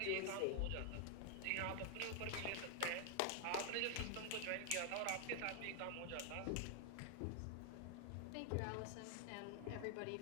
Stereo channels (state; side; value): different; both; correlation 0.00